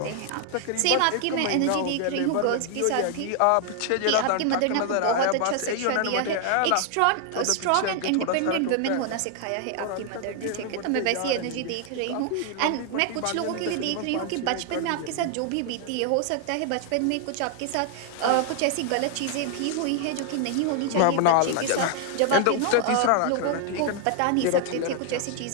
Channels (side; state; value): both; different; correlation 0.00